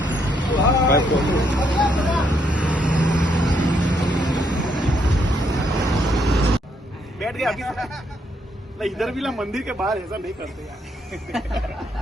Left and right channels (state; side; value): normal; both; correlation 0.74